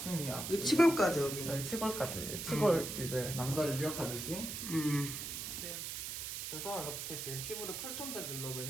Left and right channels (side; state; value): right; noise; hiss, 5 dB below the sound